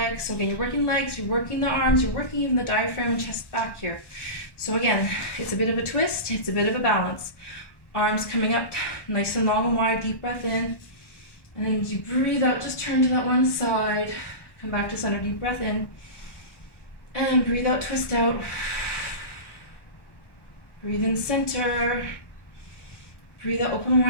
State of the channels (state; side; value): late; right; 1.1 ms